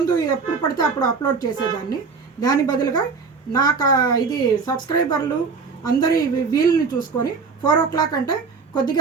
ఎప్పుడు పడితే అప్పుడు అప్లోడ్ చేసేదాన్ని. దాని బదులుగా నాకు ఇది సబ్స్క్రైబర్లు అందరి వీలుని చూసుకొని 4 o'clock అంటే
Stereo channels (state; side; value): quieter; left; 4.9 dB